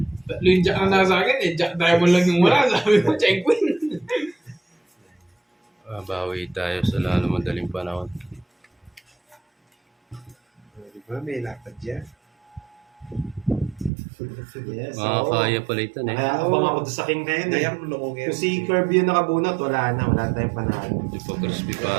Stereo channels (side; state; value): left; drops out; at 13.9 s